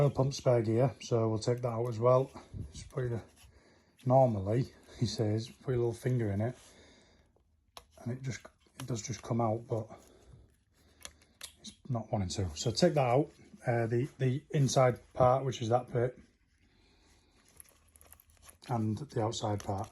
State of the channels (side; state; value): both; identical; correlation 1.00